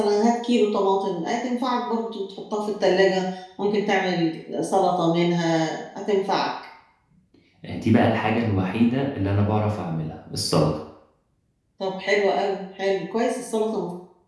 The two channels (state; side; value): identical; both; correlation 1.00